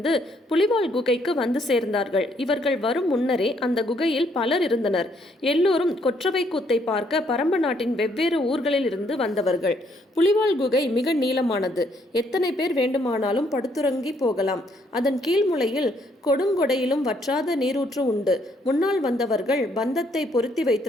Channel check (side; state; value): both; normal; correlation 0.69